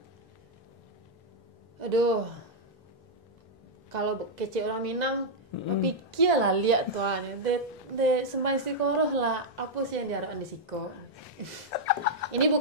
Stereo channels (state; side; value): normal; both; correlation -0.04